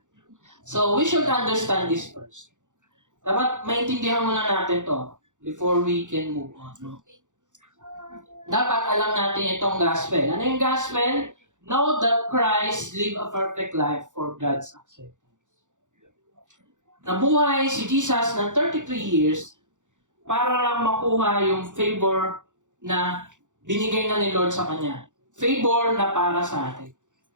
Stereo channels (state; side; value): late; left; 0.86 ms